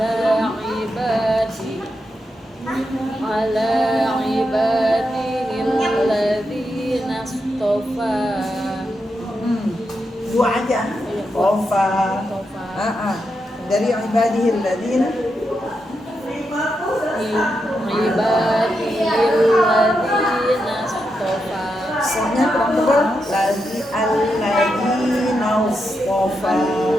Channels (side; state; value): both; normal; correlation 0.85